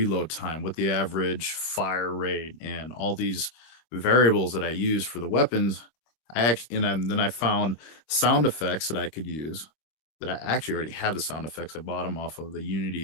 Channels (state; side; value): late; right; 25 ms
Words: time, what the average fire rate, and all these variables that I use for the weapons. Then I found sound effects that I could use. That I actually already had the sound effects. I bought them off of the